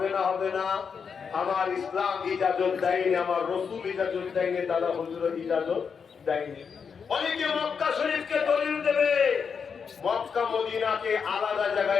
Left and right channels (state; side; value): quieter; right; 6.2 dB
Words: না? হবে না? আমার ইসলাম ইজাজত দেয়নি, আমার রাসূল ইজাজত দেয়নি, দাদা হুজুর ইজাজত দেয়নি। অনেকে মক্কা শরীফকে দলিল দেবে, মক্কা মদিনাকে আলাদা